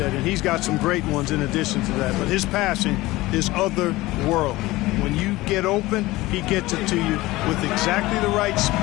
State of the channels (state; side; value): quieter; right; 19.1 dB